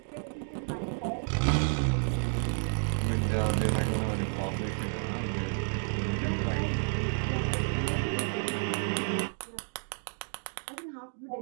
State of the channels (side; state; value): left; silent; 57 dB below the other